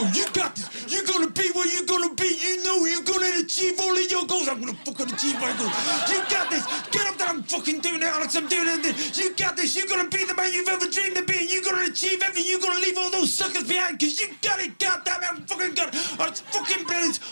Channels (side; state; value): both; inverted; correlation -1.00